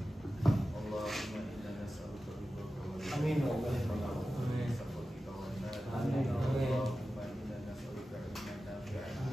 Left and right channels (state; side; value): normal; both; correlation 0.94